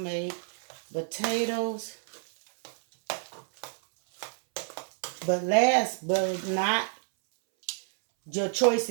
potatoes. But last but not, your choice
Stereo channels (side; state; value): left; silent; 59 dB below the other